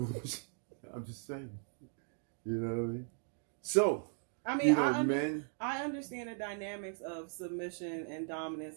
I'm just saying, you know what I mean? So, I mean, you know, I understand the dynamics of submission and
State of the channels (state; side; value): silent; left; 53 dB below the other